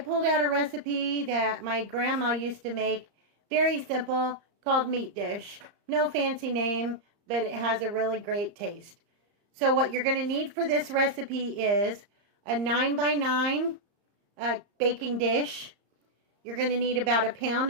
out a recipe that my grandma used to make, very simple, called meat dish. No fancy name, but it has a really great taste. So what you're going to need for this recipe is a 9x9 baking dish. You're going to need about a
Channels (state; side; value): late; left; 35 ms